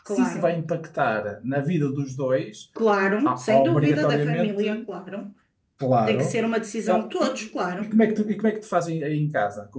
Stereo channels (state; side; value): identical; both; correlation 1.00